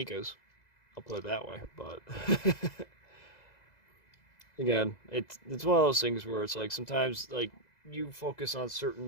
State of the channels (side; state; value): right; late; 2.0 ms